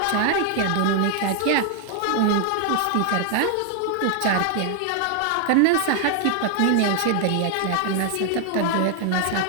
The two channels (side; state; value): both; different; correlation 0.00